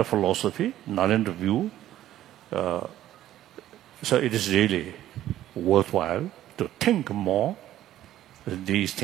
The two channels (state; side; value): quieter; left; 13.1 dB